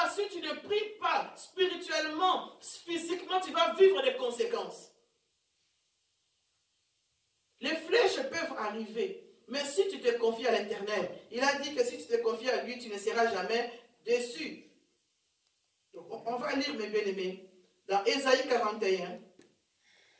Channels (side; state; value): both; identical; correlation 1.00